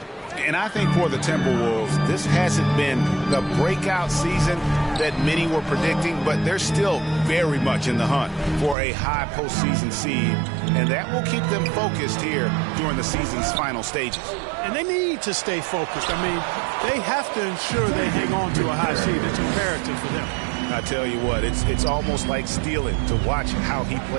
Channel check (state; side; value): drops out; left; at 8.8 s